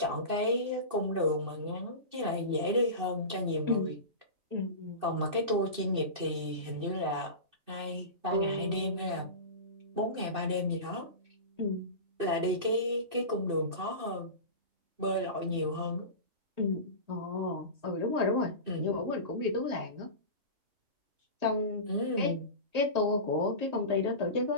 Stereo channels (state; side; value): late; left; 2.6 ms